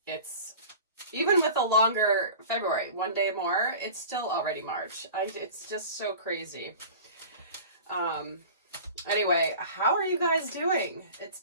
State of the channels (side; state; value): both; inverted; correlation -0.39